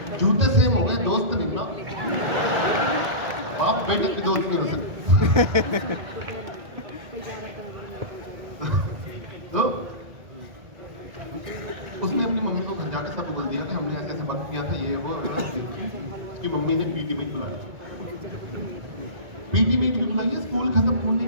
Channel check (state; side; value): late; left; 1.8 ms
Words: जूते सेम हो गए, दोस्त नहीं ना। बाप बेटे की दोस्त नहीं हो सकते। तो उसने अपनी मम्मी को घर जाके सब बोल दिया कि हमने ऐसे ऐसे वक्त किया था, ये वो। उसकी मम्मी ने पीटी मीट बुलाई। पीटी मीट भी बुलाई है स्कूल खत्म होने